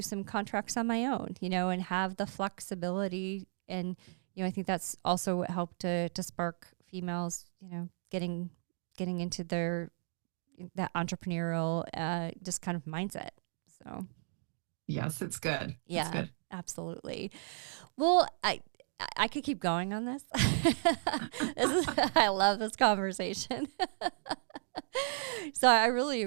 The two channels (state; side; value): silent; left; digital silence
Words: some contracts on my own, and have the flexibility. And, I think that's also what helped to spark females, getting into that entrepreneurial, just kind of mindset. So. Yes, it's good. Yeah, it's good. Absolutely. Well, I could keep going on this. I love this conversation. So I really